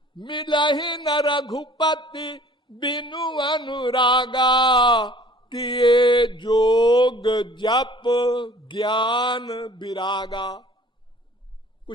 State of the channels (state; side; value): normal; both; correlation 0.51